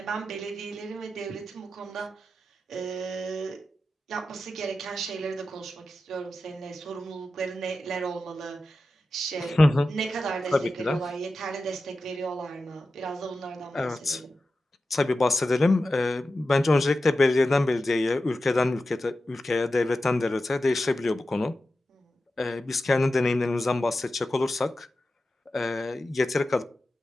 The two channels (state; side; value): normal; both; correlation 0.92